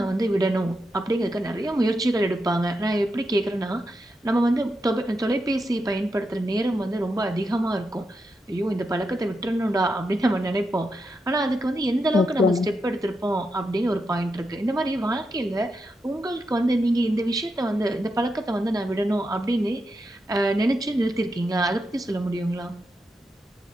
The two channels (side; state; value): both; normal; correlation 0.85